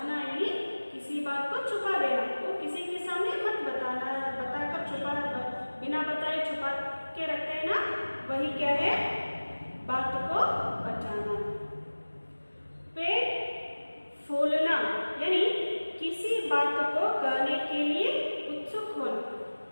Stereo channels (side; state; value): both; inverted; correlation -1.00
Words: यानी किसी बात को छुपा देना। वो किसी के सामने मत बताना, बताकर छुपा, बिना बताए छुपा के रखते हैं ना, वही क्या है? बात को पचाना। पेट फूलना यानी किसी बात को कहने के लिए उत्सुक होना।